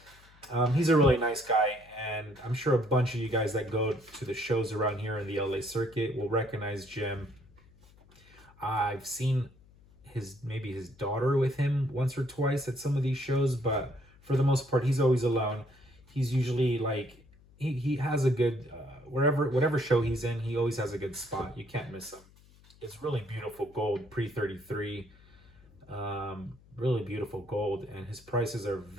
He's a really nice guy, and I'm sure a bunch of you guys that go to the shows around here in the LA circuit will recognize Jim. I've seen maybe his daughter with him once or twice at some of these shows, but for the most part, he's always alone. He's usually like he has a good whatever show he's in, he always has a good spot. You can't miss him. It's really beautiful gold pre 33, really beautiful gold, and his prices are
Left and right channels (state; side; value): noise; left; hum, 26 dB below the sound